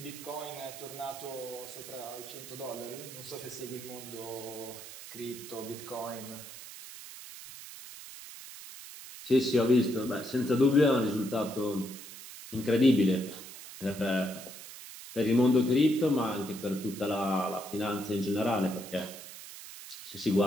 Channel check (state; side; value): noise; right; hiss, 13 dB below the sound